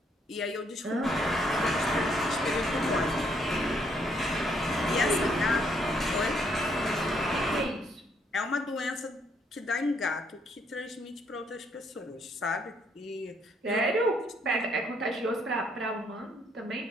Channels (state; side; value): normal; both; correlation 0.70